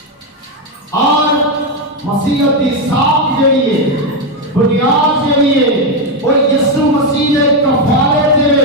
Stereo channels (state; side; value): normal; both; correlation 0.06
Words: اور مسیحیت کی ساکھ جڑی ہے، بنیاد جڑی ہے وہ یسوع مسیح نے کفارے دے